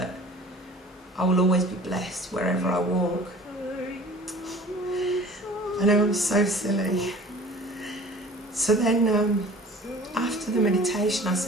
I will always be blessed wherever I walk. I know I'm so silly. So then after the meditation I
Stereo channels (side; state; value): both; normal; correlation 0.45